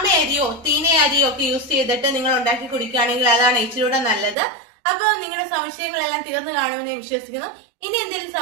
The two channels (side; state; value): left; drops out; at 4.4 s